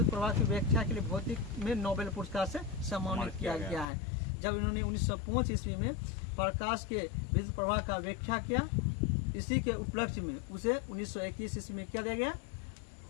प्रभाव की व्याख्या के लिए भौतिक में नोबेल पुरस्कार से सम्मानित किया गया है। जब इन्होंने 1905 ईस्वी में प्रकाश के विद्युत प्रभाव का व्याख्या किया, इसी के उपलक्ष्य में उसे 1921 ईस्वी में क्या दिया गया?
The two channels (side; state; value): right; drops out; at 3.9 s